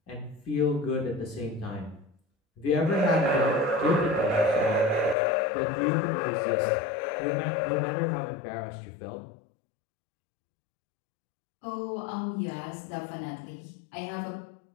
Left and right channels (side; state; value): right; drops out; at 5.2 s